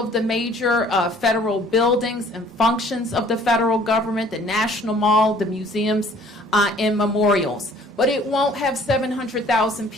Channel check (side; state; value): both; normal; correlation 0.55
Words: the major federal buildings and functions of the federal government, the National Mall, the museums, and memorials. But it won't have 700,000